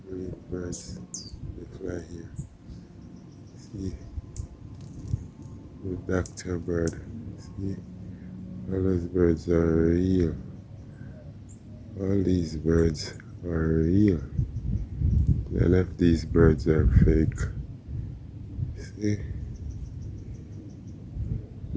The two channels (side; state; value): both; identical; correlation 1.00